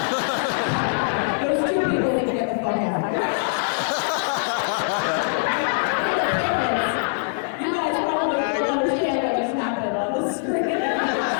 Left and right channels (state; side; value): silent; right; 57 dB below the other